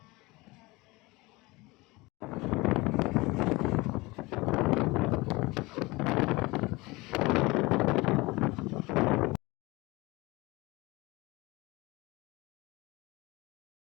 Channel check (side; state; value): right; quieter; 22.8 dB